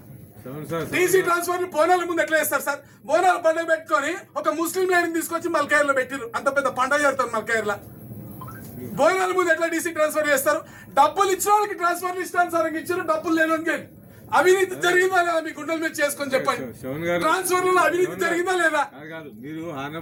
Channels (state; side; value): identical; both; correlation 1.00